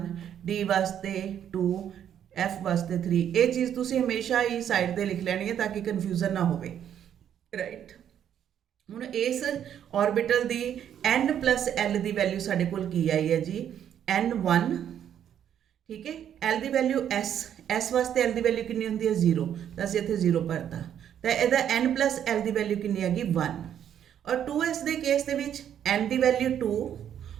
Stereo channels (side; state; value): left; quieter; 9.6 dB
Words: d ਵਾਸਤੇ 2, f ਵਾਸਤੇ 3। ਇਹ ਚੀਜ਼ ਤੁਸੀਂ ਹਮੇਸ਼ਾ ਹੀ ਸਾਈਡ ਤੇ ਲਿਖ ਲੈਣੀ ਹੈ ਤਾਂ ਕਿ ਕਨਫਿਊਜ਼ਨ ਨਾ ਹੋਵੇ। ਰਾਈਟ, ਹੁਣ ਇਸ ਆਰਬਿਟਲ ਦੀ n+l ਦੀ ਵੈਲਿਊ ਸਾਡੇ ਕੋਲ ਕੀ ਆਈ ਹੈ ਜੀ? n1। ਠੀਕ ਹੈ, l ਦੀ ਵੈਲਿਊ s ਵਾਸਤੇ l ਦੀ ਵੈਲਿਊ ਕਿੰਨੀ ਹੁੰਦੀ ਹੈ? 0, ਤਾਂ ਅਸੀਂ ਇੱਥੇ 0 ਭਰਤਾ। ਤਾਂ ਇਹਦਾ n+l ਦੀ ਵੈਲਿਊ ਕਿੰਨੀ ਹੈਗੀ? 1। ਔਰ 2s ਦੇ ਕੇਸ ਦੇ ਵਿੱਚ n ਦੀ ਵੈਲਿਊ 2